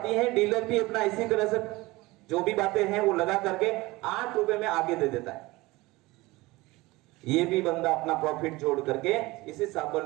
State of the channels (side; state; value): left; quieter; 21.1 dB